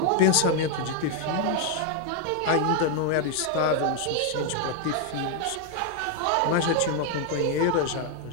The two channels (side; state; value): both; different; correlation 0.00